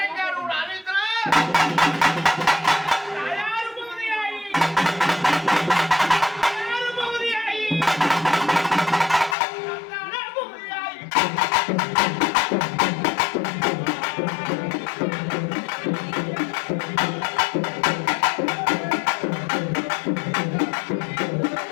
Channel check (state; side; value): drops out; right; at 9.3 s